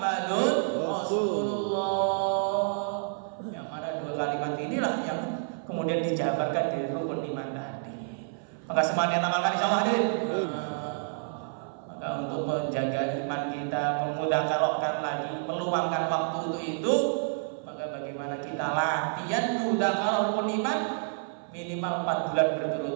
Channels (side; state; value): left; silent; 55 dB below the other